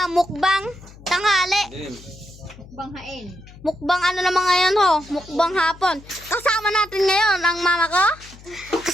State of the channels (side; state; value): left; noise; hum, 20 dB below the sound